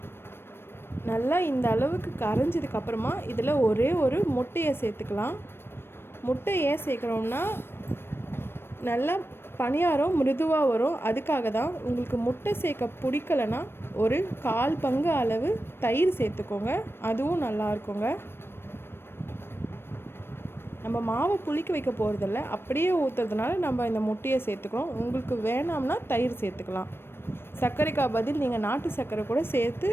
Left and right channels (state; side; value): late; right; 0.11 ms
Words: நல்லா இந்த அளவுக்கு கரைஞ்சதுக்கப்புறமா இதில் ஒரே ஒரு முட்டையை சேர்த்துக்கலாம். முட்டை ஏன் சேர்க்குறோம்னா நல்லா பணியாரம் மிருதுவாக வரும். அதுக்காக தான். உங்களுக்கு முட்டை சேர்க்க பிடிக்கலைன்னா ஒரு 1/4 பங்கு அளவு தயிர் சேர்த்துக்கோங்க. அதுவும் நல்லா இருக்குங்க. நம்ம மாவை புளிக்க வைக்க போகிறதில்ல, அப்படியே ஊற்றுறதுனால நம்ம இந்த முட்டையை சேர்த்துக்கிறோம். உங்களுக்கு வேணாம்னா தயிர் சேர்த்துக்கலாம். சர்க்கரைக்கா பதில் நீங்கள் நாட்டு சர்க்கரை கூட சேர்த்து